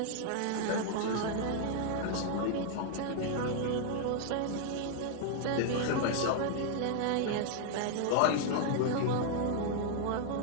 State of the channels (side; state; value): both; different; correlation 0.00